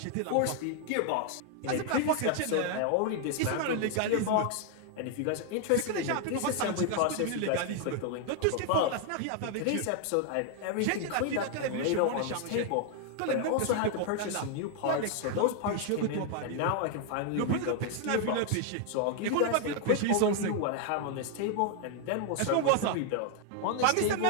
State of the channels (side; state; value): both; different; correlation 0.00